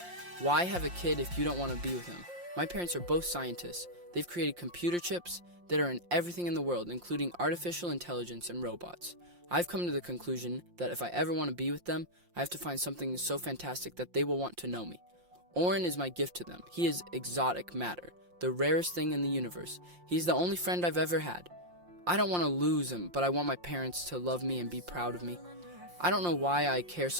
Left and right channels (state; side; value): late; left; 5.7 ms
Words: Why have a kid if you don't want to be with him? My parents are both scientists. They've created computer chips that are in everything in the world, including artificial intelligence and robots. I've come to the conclusion that if I ever want to be with them, I have to find something so fantastic that they will want to know me. Oren is my gift to them. He is exotic matter, the rarest thing in the universe. He's the only friend I've ever had. I don't want to lose him, but I want my parents to love me and be proud of me. I don't know why I care